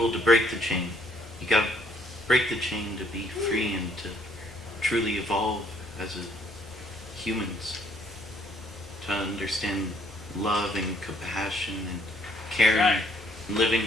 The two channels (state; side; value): normal; both; correlation 0.66